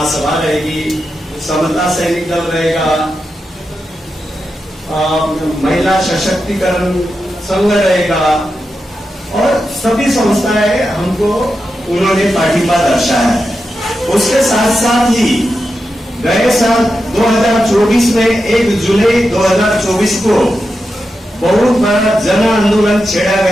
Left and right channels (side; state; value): both; normal; correlation 0.89